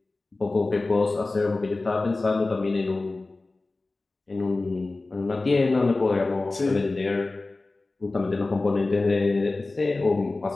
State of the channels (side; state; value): right; quieter; 3.3 dB